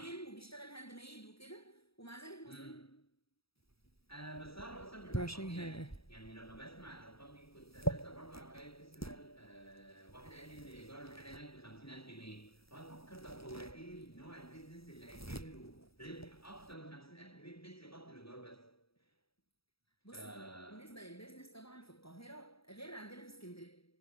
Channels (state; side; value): late; right; 0.76 ms